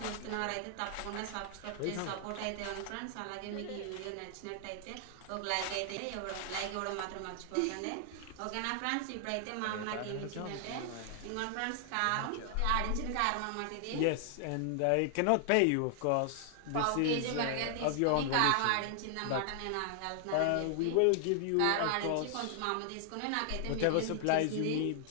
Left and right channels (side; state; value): both; different; correlation 0.00